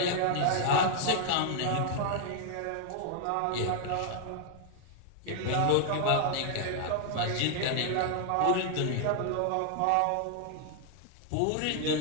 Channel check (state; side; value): different; both; correlation 0.00